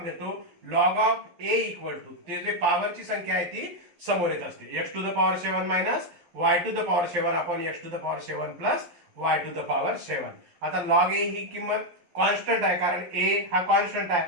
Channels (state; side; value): late; left; 12 ms